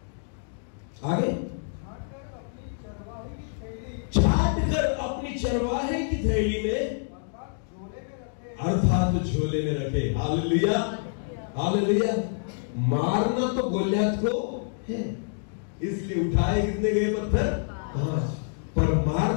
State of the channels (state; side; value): silent; right; digital silence